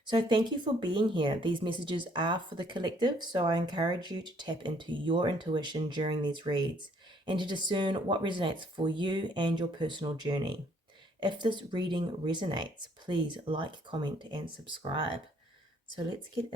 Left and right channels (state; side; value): normal; both; correlation 0.64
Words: So, thank you for being here. These messages are for the collective, so I encourage you to tap into your intuition during these reads and to discern what resonates for you and your personal journey. If this reading resonates, please like, comment, and subscribe. So let's get